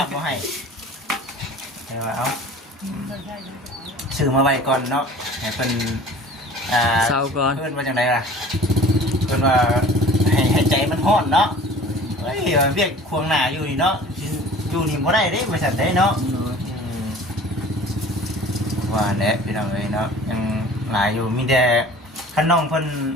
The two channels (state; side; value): normal; both; correlation 0.45